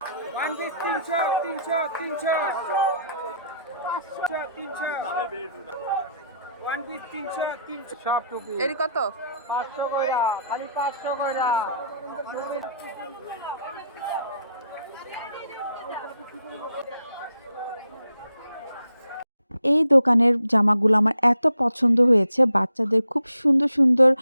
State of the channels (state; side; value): inverted; both; correlation -0.72